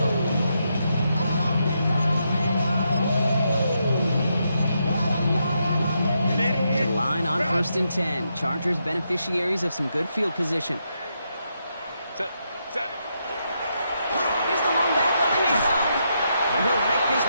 To the line on 1st and 10. Chargers beneficiaries of some good field position. Set. Here's the one back on the handoff. And he'll make his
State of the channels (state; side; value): inverted; both; correlation -0.81